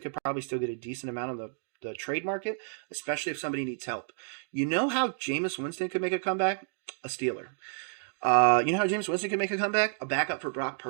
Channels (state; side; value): silent; left; digital silence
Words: could probably still get a decent amount on the trade market, especially if somebody needs help. You know how Jameis Winston could make a comeback? A Steeler. You know how James Winston can make a comeback? A backup for Brock